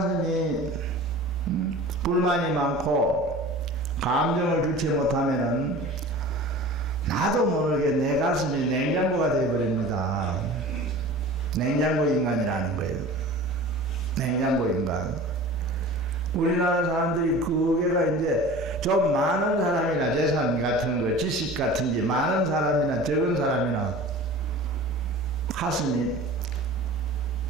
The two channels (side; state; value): both; normal; correlation 0.39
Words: 불만이 많고 감정을 주체 못하면은 나도 모르게 내 가슴이 냉장고가 되어버립니다. 냉장고 인간이라는 거예요. 냉장고 인간. 우리나라 사람들이 그게가 이제 좀 많은 사람이나 재산 같은 거, 지식 같은 게 많은 사람이나 적은 사람이나 가슴이